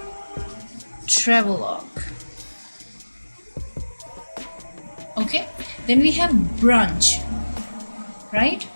travelogue. Okay, then we have brunch, right?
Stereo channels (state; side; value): inverted; both; correlation -1.00